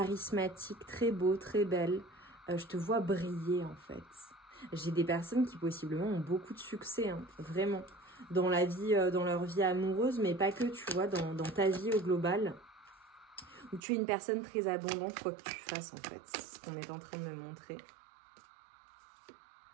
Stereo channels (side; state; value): left; drops out; at 13.8 s